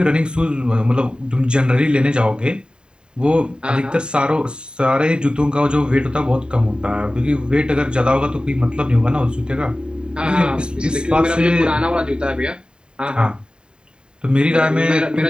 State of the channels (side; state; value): left; late; 0.049 ms